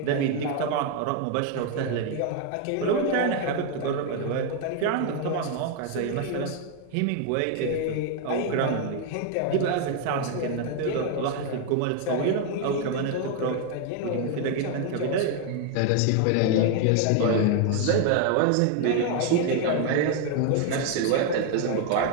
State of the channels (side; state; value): both; different; correlation 0.01